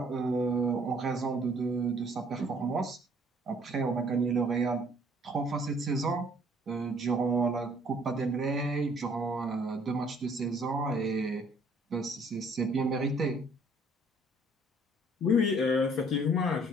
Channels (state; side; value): normal; both; correlation 0.60